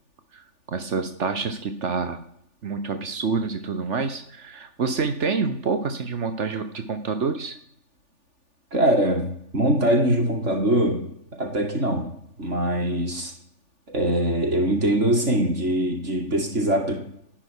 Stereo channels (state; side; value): late; left; 3.4 ms